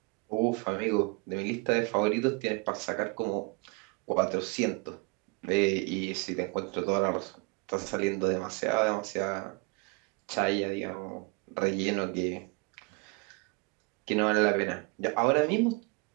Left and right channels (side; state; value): left; quieter; 29.4 dB